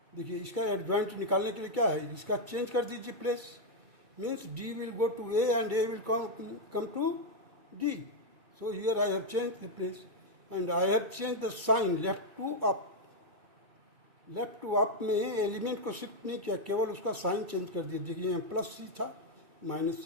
देखिए इसका एडजॉइंट निकालने के लिए क्या है, इसका चेंज कर दीजिए place, means D will go to A and A will come to D. So here I have changed the place and I have changed the sign left to up. Left to up में element को shift नहीं किया, केवल उसका sign change कर दिया। देखिए यहाँ प्लस सी था माइनस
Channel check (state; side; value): late; left; 2.3 ms